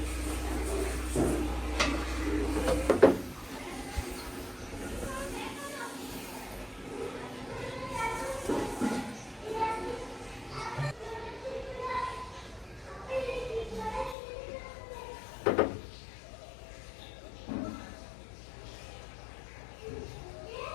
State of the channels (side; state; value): right; drops out; at 14.2 s